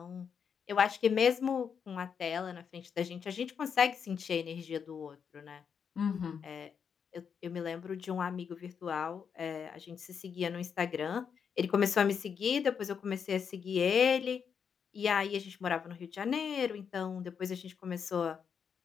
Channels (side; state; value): right; quieter; 6.9 dB